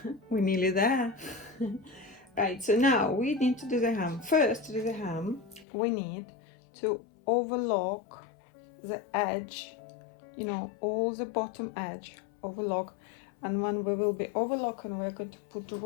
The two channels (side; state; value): right; drops out; at 5.7 s